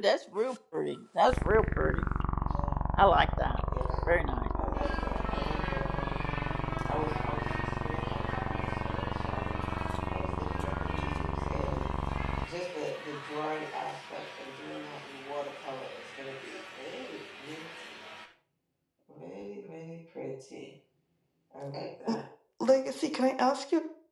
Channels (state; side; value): identical; both; correlation 1.00